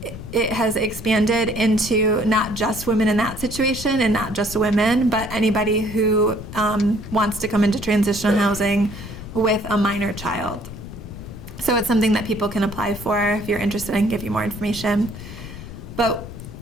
it has expanded into not just women in that situation and not just women, but anybody who wants to come into transitional housing with a minor child. So it's something that people can apply for if you're interested. I can give you more information. But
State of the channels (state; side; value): noise; left; rumble, 12 dB below the sound